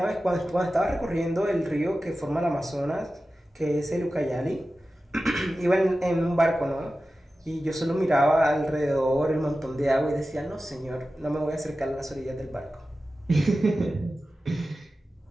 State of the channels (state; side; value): normal; both; correlation 0.94